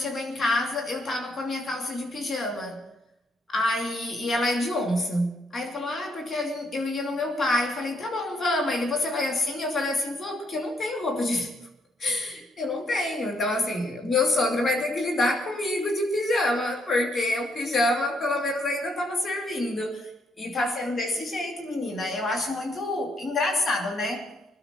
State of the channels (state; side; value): normal; both; correlation 0.73